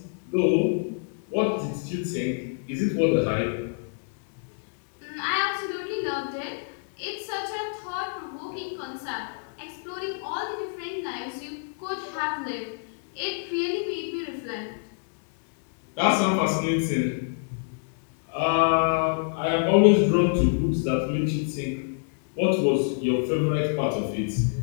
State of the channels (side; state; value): right; silent; digital silence